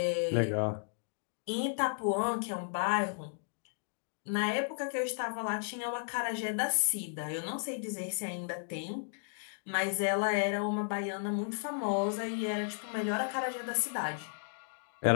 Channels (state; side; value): silent; right; digital silence